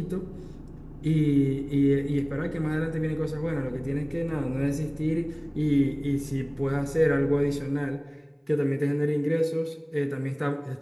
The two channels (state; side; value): identical; both; correlation 1.00